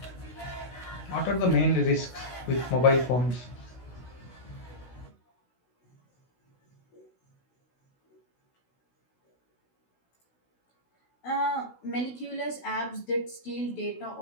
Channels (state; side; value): late; right; 16 ms